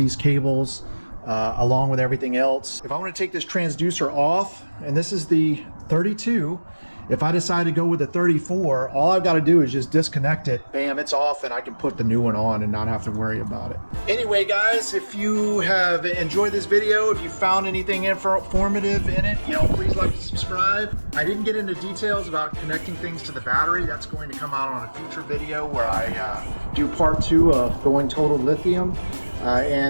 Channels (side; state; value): both; inverted; correlation -1.00